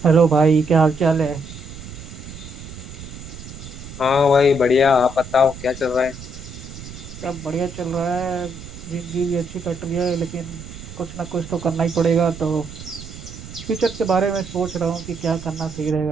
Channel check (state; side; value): noise; right; rumble, 13 dB below the sound